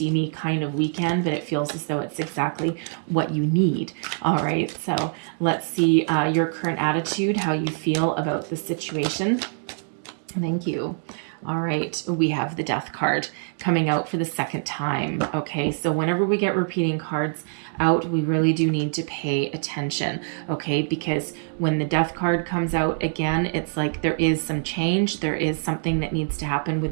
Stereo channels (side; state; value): left; silent; 57 dB below the other